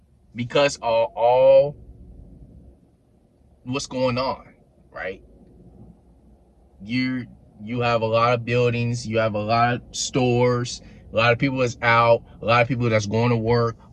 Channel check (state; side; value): identical; both; correlation 1.00